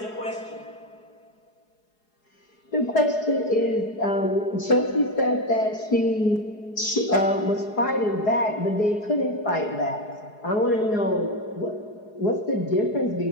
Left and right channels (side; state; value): right; late; 4.8 ms